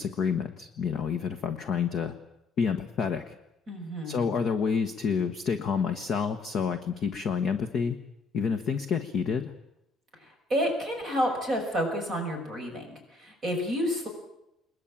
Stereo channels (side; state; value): right; quieter; 3.9 dB